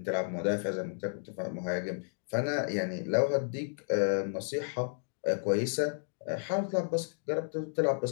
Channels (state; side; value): silent; right; digital silence